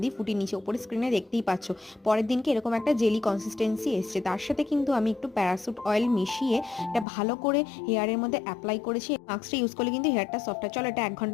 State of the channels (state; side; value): drops out; right; at 7.1 s